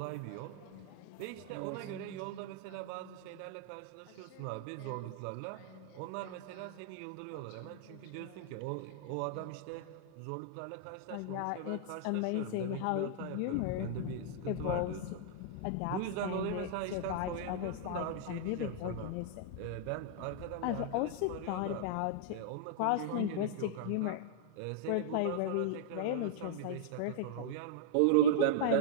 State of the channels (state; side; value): different; both; correlation -0.02